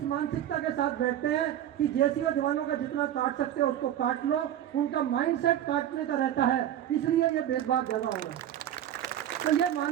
मानसिकता के साथ बैठते हैं कि जेसीओ जवानों का जितना काट सकते हो उसको काट लो। उनका माइंडसेट काटने का रहता है, इसलिए ये भेदभाव ज़्यादा हो रहा है। तो ये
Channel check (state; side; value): quieter; left; 11.3 dB